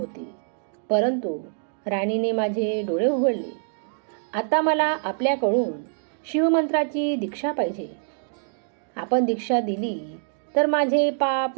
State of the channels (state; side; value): silent; left; digital silence